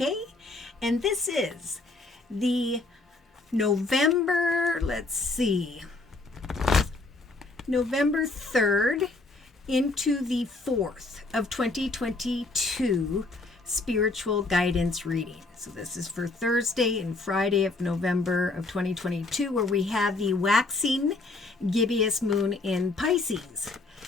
and this is the November 3rd into the 4th of 2022 spiritual guidance reading. So this is for Thursday and Friday of November of 2022, where we have the waxing gibbous moon in Pisces.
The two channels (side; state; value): right; quieter; 3.3 dB